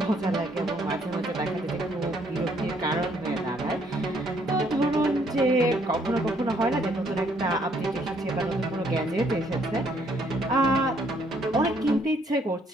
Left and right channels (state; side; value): normal; both; correlation 0.67